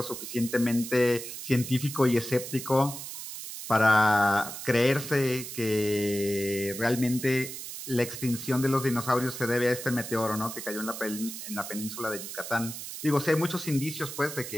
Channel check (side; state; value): right; noise; hiss, 9 dB below the sound